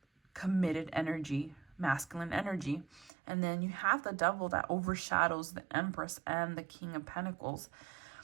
committed energy, masculine energy. And then you have the Devil that overshadows the Empress and the King of Pentacles.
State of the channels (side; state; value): left; drops out; at 3.1 s